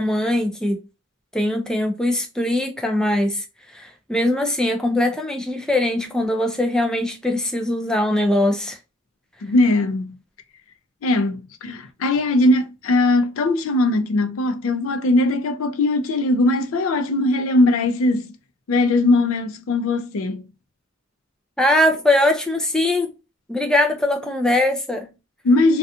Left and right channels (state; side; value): normal; both; correlation 0.62